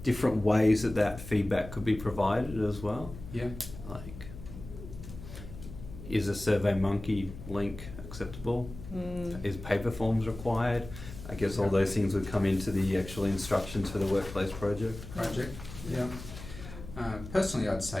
different ways that feedback could be provided as well. Yeah. Like, is a SurveyMonkey link acceptable? Is paper forms required? I guess all those things would come into the actual instructions for the workplace project. Yeah. Personally, I'd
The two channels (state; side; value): noise; left; hum, 13 dB below the sound